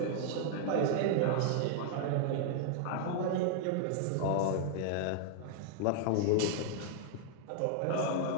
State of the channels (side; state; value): both; different; correlation 0.00